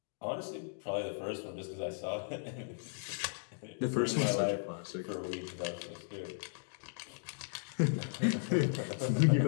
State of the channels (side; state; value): right; silent; digital silence